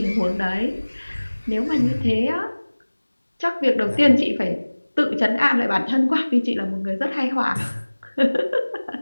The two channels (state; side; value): inverted; both; correlation -1.00